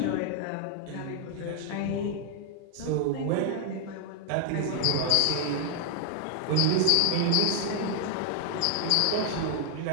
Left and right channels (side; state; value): both; different; correlation 0.00